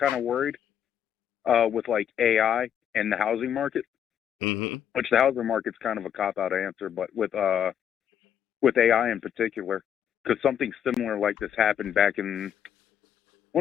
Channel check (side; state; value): right; quieter; 9.3 dB